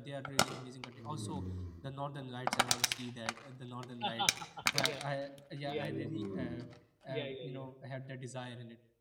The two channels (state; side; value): identical; both; correlation 1.00